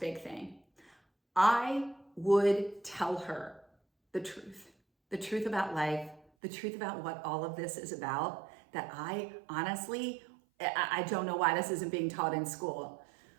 thing. I would tell her the truth about life, the truth about what all of this is about, that I honestly, I don't know why this isn't being taught in school.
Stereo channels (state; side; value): drops out; left; at 6.2 s